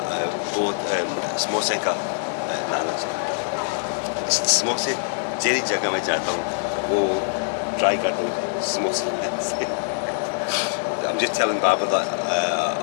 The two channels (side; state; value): right; silent; digital silence